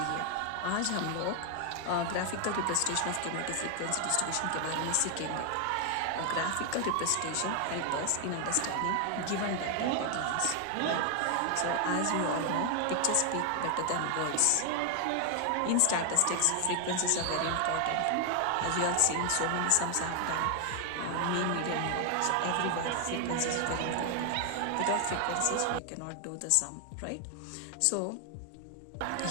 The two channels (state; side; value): different; both; correlation 0.00